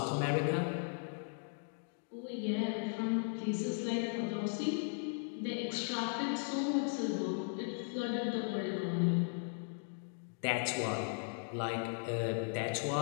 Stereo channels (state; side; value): silent; right; 53 dB below the other